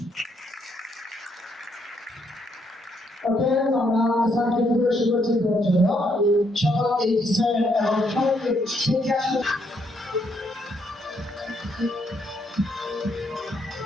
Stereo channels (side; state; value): both; normal; correlation 0.73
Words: আমরা স্যারকে পরিবেশন করছি জন্য সকল এই স্যার এবং সকলকে শিক্ষা